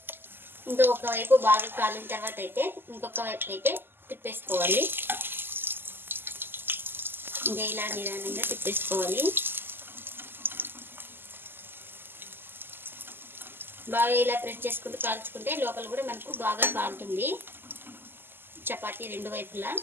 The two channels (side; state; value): left; late; 0.099 ms